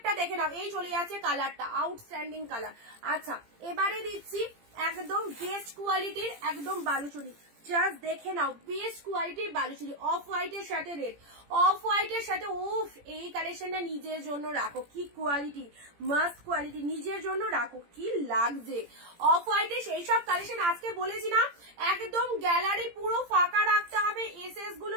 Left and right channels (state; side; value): late; left; 17 ms